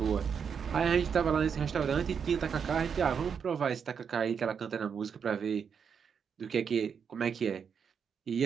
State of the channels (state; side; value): quieter; left; 6.8 dB